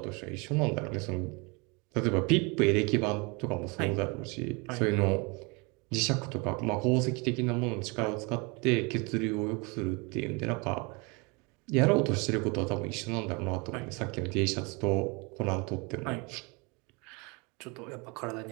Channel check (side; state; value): left; quieter; 29.2 dB